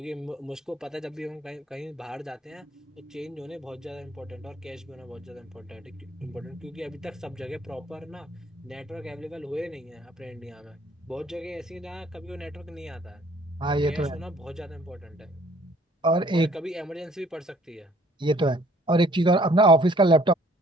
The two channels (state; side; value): normal; both; correlation 0.58